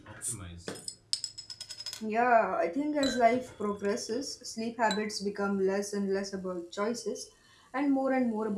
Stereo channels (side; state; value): both; identical; correlation 1.00